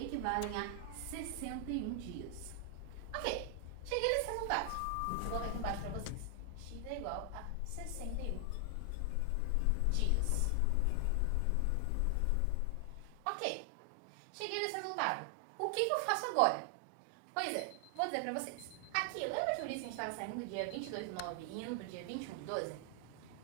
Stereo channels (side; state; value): both; different; correlation 0.00